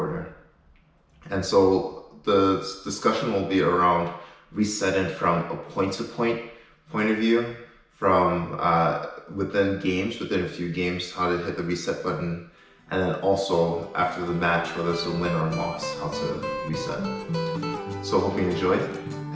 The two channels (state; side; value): identical; both; correlation 1.00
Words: And so the discussion will be around resetting from a point-to-point point of view, from within games, within a few games, how to hit the reset button, and then also after the match, whether it's a win or a loss, how to reset. So hope you enjoyed,